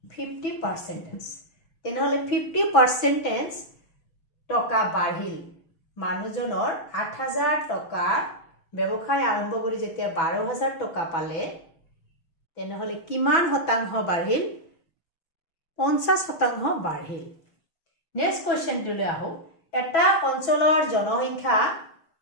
50%। তেনেহলে 50% টকা বাঢ়িল, মানুহজনৰ 8000 টকা ব্যৱসায় আৰম্ভ কৰি যেতিয়া 12000 টকা পালে, তেনেহলে কিমান শতাংশ বাঢ়িল 50% বাঢ়িল নেক্সট কোৱেশ্চনটোলৈ আহো এটা অঞ্চলৰ জনসংখ্যা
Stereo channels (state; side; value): late; right; 6.0 ms